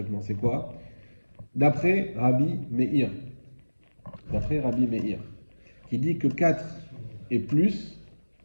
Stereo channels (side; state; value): both; inverted; correlation -1.00